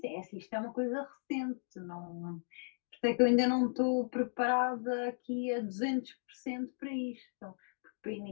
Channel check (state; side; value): silent; right; digital silence